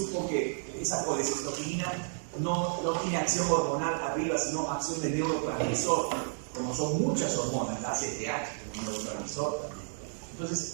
que esa colecistoquinina no tiene acción hormonal arriba, sino acción de neurotransmisor, como son muchas hormonas, la ACTH, como neurotransmisor también.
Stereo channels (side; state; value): left; silent; digital silence